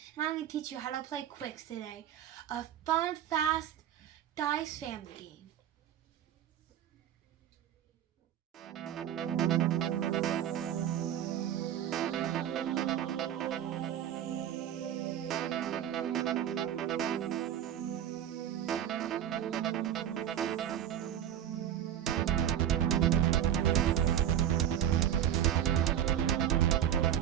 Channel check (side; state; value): left; quieter; 10.5 dB